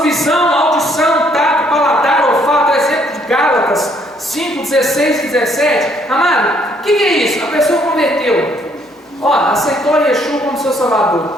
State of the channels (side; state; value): both; normal; correlation 0.67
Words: visão, audição, tato, paladar, olfato, exemplo de Gálatas 5, 16 e 17. Amado, o que é isso? A pessoa converteu, aceitou Yeshua como seu salvador.